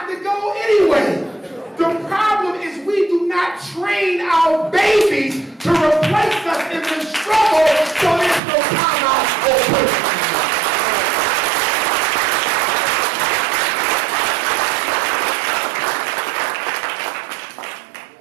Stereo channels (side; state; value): left; drops out; at 8.4 s